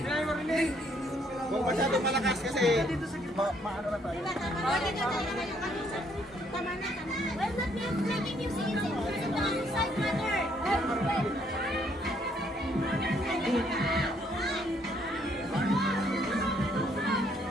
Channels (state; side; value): normal; both; correlation 0.68